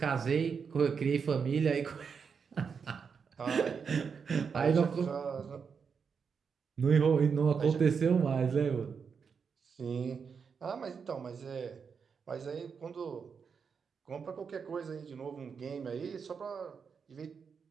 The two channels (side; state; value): left; quieter; 6.1 dB